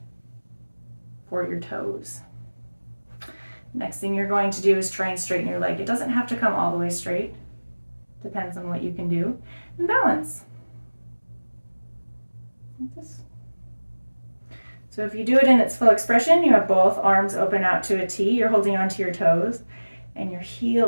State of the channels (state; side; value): inverted; both; correlation -1.00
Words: for your toes. Next thing you're going to do is try and straighten your leg. It doesn't have to come all the way straight. Depends on what you can do. And balance. Like this. So if you do it in its full expression, you have both arms open out to a T. You're holding onto your toes and your